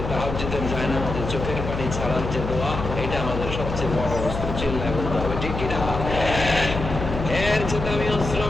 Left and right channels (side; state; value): left; noise; hum, 6 dB below the sound